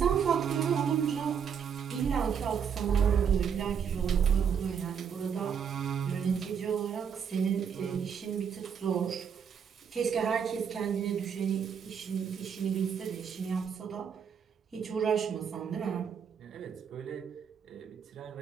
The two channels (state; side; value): quieter; left; 7.3 dB